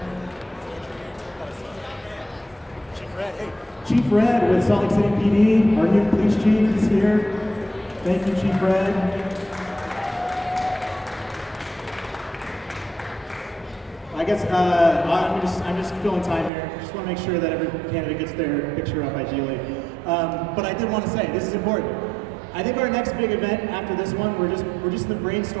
Chief Red with Salt Lake City PD, our new police chief is here. Thank you, Chief Red. I guess I'm just filling time here. Just want to make sure that every candidate gets their picture up ideally. But I did want to say this is important. I think our next big event after this one, we're just in the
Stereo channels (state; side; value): drops out; left; at 16.5 s